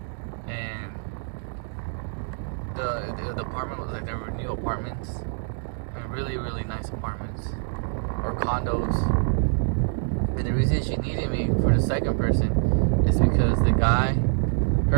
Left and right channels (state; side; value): silent; left; digital silence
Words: and the apartment was like, there were new apartments, and really nice apartments or condos. And the reason she needed me for the second person is because the guy,